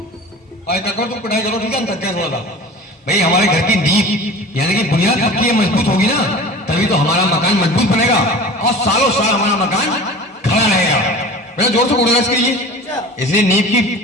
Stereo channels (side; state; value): both; normal; correlation 0.38